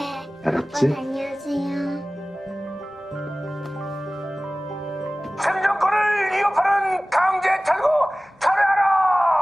알았지? 아빠 다녀오세요. 생존권을 위협하는 강제 탈고 철회하라!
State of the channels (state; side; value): normal; both; correlation 0.98